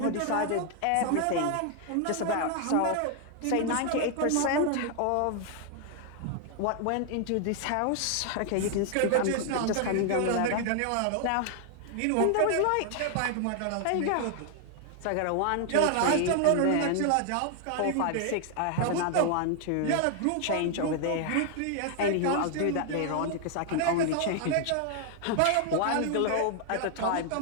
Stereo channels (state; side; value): different; both; correlation 0.00